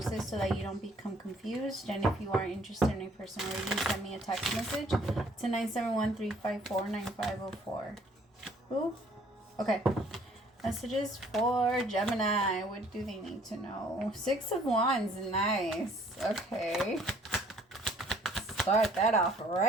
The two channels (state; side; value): normal; both; correlation 0.59